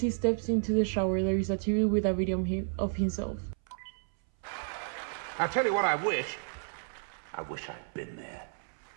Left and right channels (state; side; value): silent; left; 57 dB below the other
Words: steps into the shower, there is a TV with a video of himself. I'll tell you what I wish. I wish I'd been there.